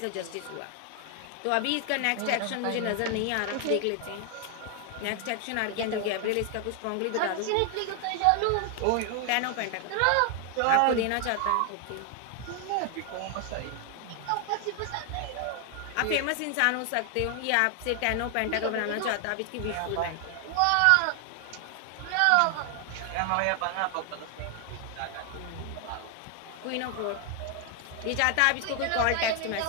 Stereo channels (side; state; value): both; different; correlation 0.00